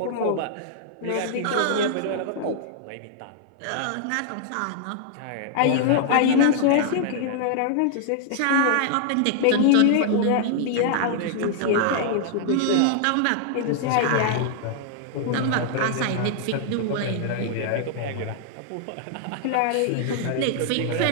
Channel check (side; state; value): both; different; correlation -0.01